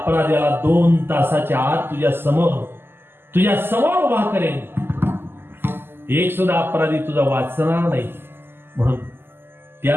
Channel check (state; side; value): late; left; 0.11 ms